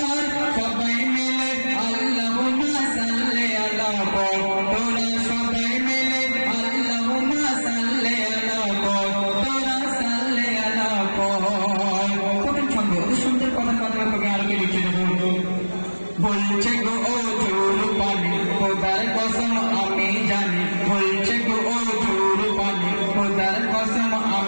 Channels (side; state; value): both; inverted; correlation -1.00